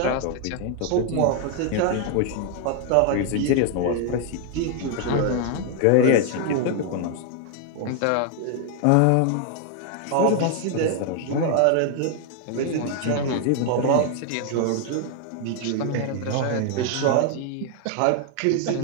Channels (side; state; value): both; different; correlation 0.00